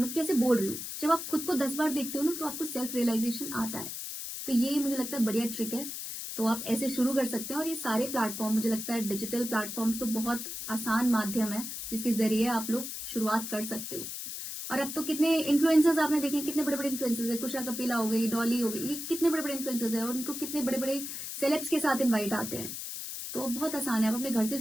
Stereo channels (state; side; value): noise; left; hiss, 7 dB below the sound